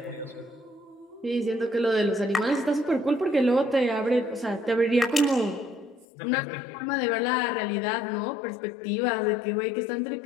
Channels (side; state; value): right; drops out; at 6.1 s